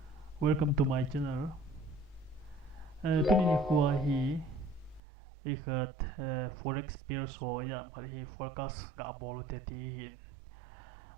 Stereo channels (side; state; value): left; drops out; at 5.0 s